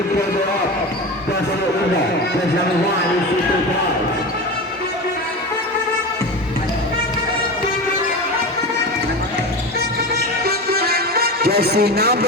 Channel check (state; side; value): normal; both; correlation 0.26